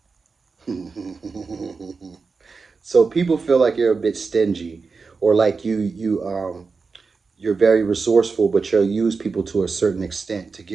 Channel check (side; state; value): left; quieter; 4.6 dB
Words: So people feel like you're a bit stingy, or like you're very resourceful, but you'll use people to a certain extent to